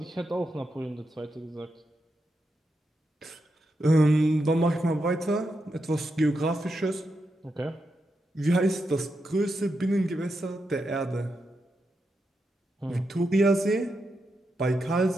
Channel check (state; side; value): normal; both; correlation 0.85